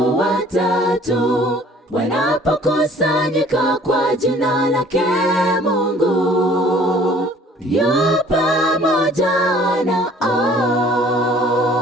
watatu wanapokusanyika kwa jina lake Mungu, yu pamoja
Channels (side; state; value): both; normal; correlation 0.54